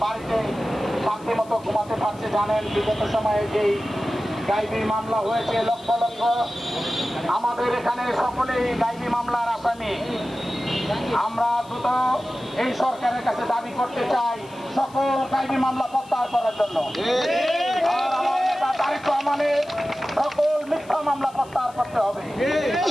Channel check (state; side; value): noise; left; hiss, 25 dB below the sound